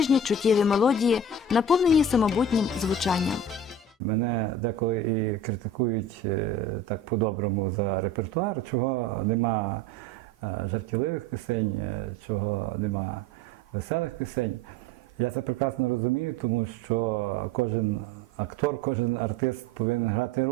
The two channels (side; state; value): both; normal; correlation 0.37